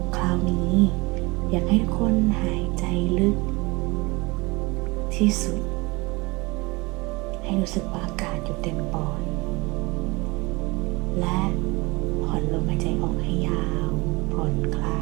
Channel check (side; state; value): left; quieter; 24.6 dB